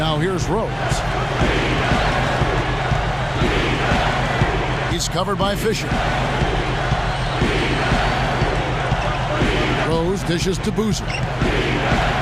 here's Rose. He's covered by Fisher. Rose dishes to Boozer.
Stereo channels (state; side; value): identical; both; correlation 1.00